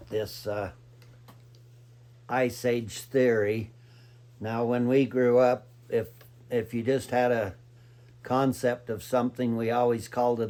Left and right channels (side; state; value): both; identical; correlation 1.00